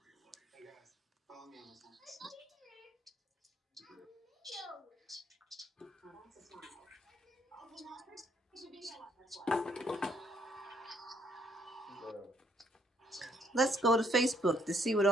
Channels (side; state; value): both; normal; correlation 0.68